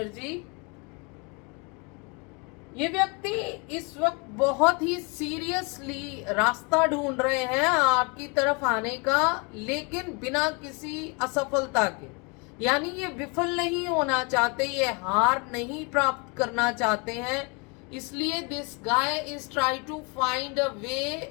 ये व्यक्ति इस वक्त बहुत ही सीरियसली रास्ता ढूंढ रहे हैं आपकी तरफ आने का, लेकिन बिना किसी असफलता के। यानी ये विफल नहीं होना चाहते, ये हार नहीं प्राप्त करना चाहते हैं, इसलिए this guy is try to find a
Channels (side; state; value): right; quieter; 31.7 dB